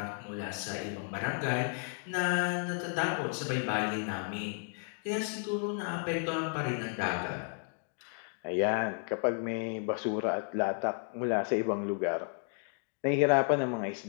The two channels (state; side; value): silent; right; 56 dB below the other